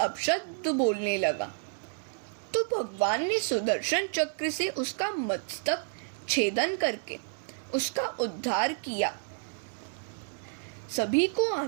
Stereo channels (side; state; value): left; silent; 58 dB below the other